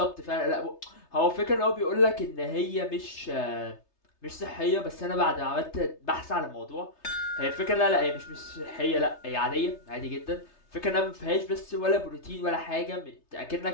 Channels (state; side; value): late; right; 3.3 ms